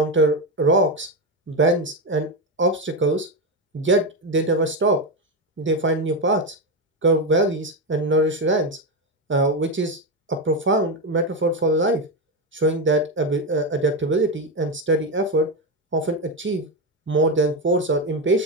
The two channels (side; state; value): both; normal; correlation 0.11